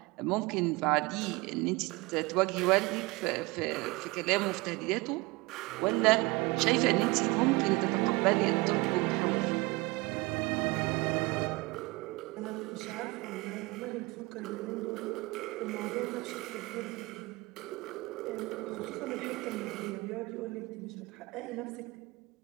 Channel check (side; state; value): left; quieter; 23.7 dB